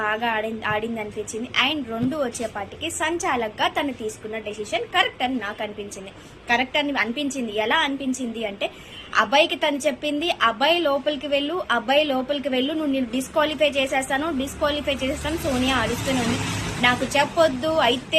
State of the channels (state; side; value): identical; both; correlation 1.00